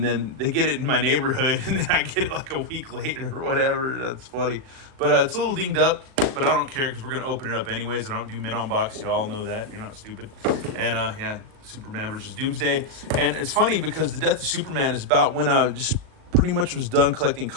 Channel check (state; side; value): late; left; 38 ms